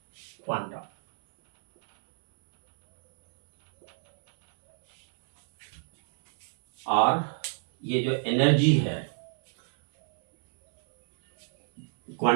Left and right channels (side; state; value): left; silent; 60 dB below the other